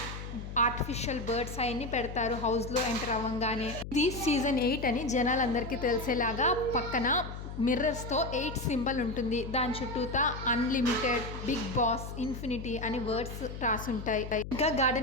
ఆర్టిఫిషియల్ బర్డ్స్ అవన్నీ పెడతారు హౌస్లో ఎంటర్ అవ్వగానే. ఇది సీజన్ 8 అని జనాలందరికీ తెలిసేలాగా పక్కన మిర్రర్స్తో 8 సింబల్ ఉంటుంది. దాని చుట్టూతా అన్లిమిటెడ్, బిగ్ బాస్, ఇన్ఫినిటీ అని వర్డ్స్ రాసుంటాయి. ఇంకా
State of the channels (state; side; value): noise; left; hum, 9 dB below the sound